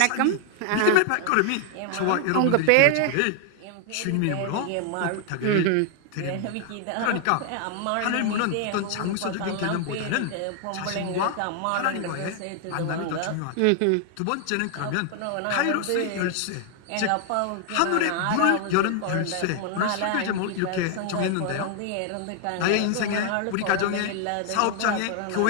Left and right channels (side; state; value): both; different; correlation 0.00